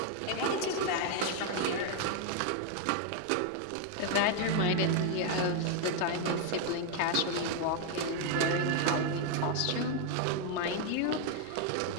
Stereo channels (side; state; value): both; different; correlation 0.00